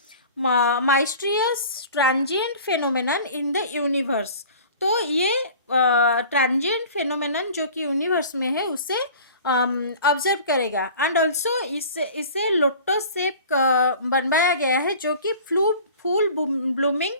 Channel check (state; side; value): inverted; both; correlation -0.43